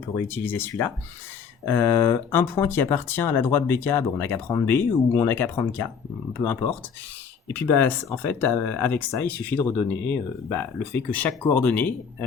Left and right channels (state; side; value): quieter; right; 6.4 dB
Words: réutiliser celui-là. Un point qui appartient à la droite BK, on n'a qu'à prendre B ou on n'a qu'à prendre K, peu importe. Et puis en fait, avec ça, il suffit de redonner le fait que chaque coordonnée